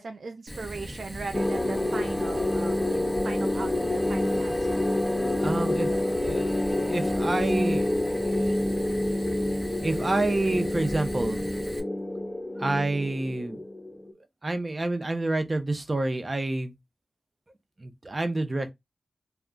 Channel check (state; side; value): normal; both; correlation 0.97